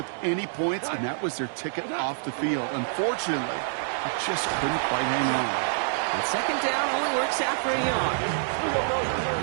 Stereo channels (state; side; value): silent; left; digital silence